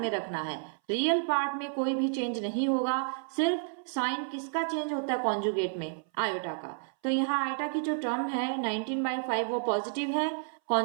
रखना है, रियल पार्ट में कोई भी चेंज नहीं होगा, सिर्फ साइन किसका चेंज होता है कॉन्जुगेट में, आयोटा का। तो यहाँ आयोटा की जो टर्म है 19/5 वो पॉजिटिव है,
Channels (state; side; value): silent; left; 57 dB below the other